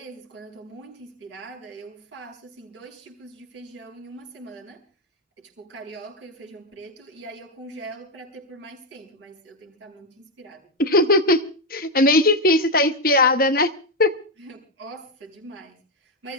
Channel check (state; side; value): normal; both; correlation 0.06